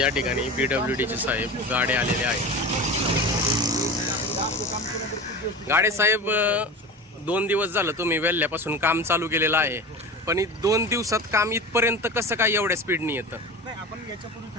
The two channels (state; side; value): normal; both; correlation 0.31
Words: ठिकाणी PWDचे साहेब गाडे आलेले आहेत. गाडे साहेब 2 दिवस झालं तुम्ही वेल्ल्यापासून काम चालू केलेलं आहे, पण 2 दिवसात काम इथपर्यंत कसं काय एवढ्या स्पीडनी येतं? नाही, आपण याच्यापूर्वी